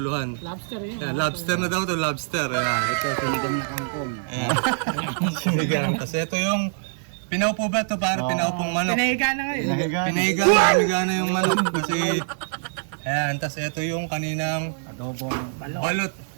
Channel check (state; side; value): silent; left; 62 dB below the other